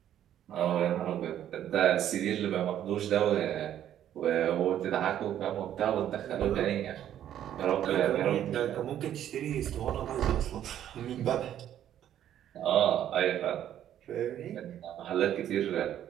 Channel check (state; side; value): quieter; left; 10.9 dB